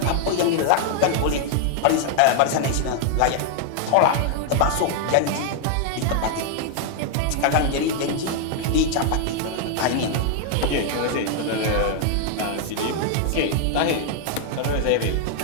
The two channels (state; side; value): different; both; correlation 0.00